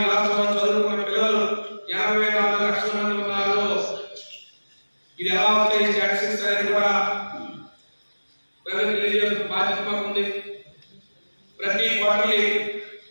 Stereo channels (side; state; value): both; inverted; correlation -1.00